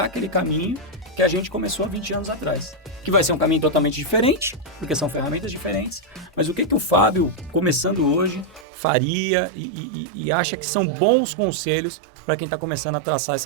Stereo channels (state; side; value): drops out; left; at 8.7 s